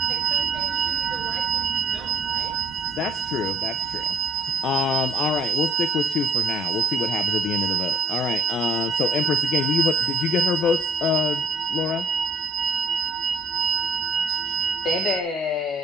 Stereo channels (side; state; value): both; normal; correlation 0.64